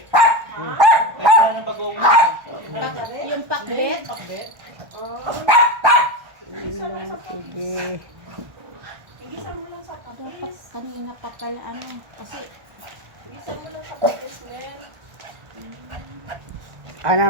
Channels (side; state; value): left; late; 1.3 ms